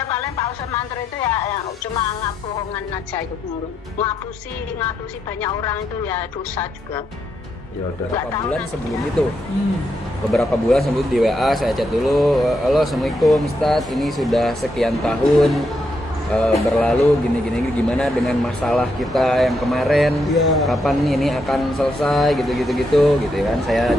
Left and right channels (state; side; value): normal; both; correlation 0.80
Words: paling Pak Ustadz Mantur itu ya cuma ngabohongan aja itu mulu. Ngapusi banyak orang itu ya dosa juga. Ya udah. Beberapa bulan sebelum di WA saya chat dulu, halo assalamualaikum Ustadz, ini sudah sekian tahun berlalu gini gimana dengan masalah kita yang kemarin, kapan ini akan selesai gitu kan. Saya